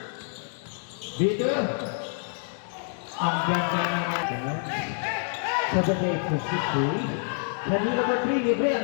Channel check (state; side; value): silent; right; 60 dB below the other